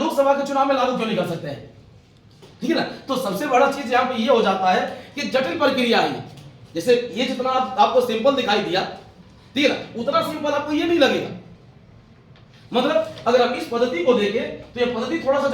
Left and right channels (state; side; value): identical; both; correlation 1.00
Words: के चुनाव में लागू क्यों नहीं कर सकते हैं, ठीक है ना। तो सबसे बड़ा चीज यहाँ पे ये हो जाता है कि जटिल प्रक्रिया है। जैसे ये जितना आपको सिंपल दिखाई दिया, ठीक है ना, उतना सिंपल आपको ये नहीं लगेगा। मतलब अगर हम इस पद्धति को देखें तो यह पद्धति थोड़ा सा